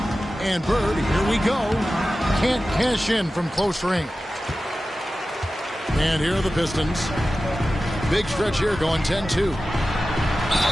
And Bird, here we go. Can't cash in from close range. And here are the Pistons. Big stretch here going 10-2.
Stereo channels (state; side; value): normal; both; correlation 0.95